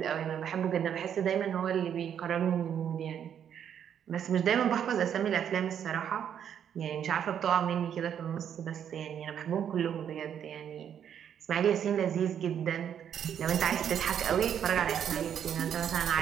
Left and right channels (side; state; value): left; quieter; 8.9 dB